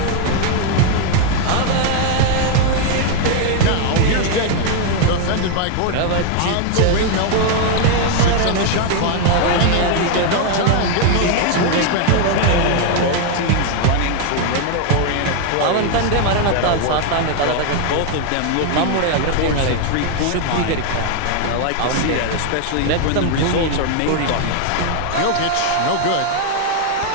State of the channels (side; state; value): both; different; correlation 0.00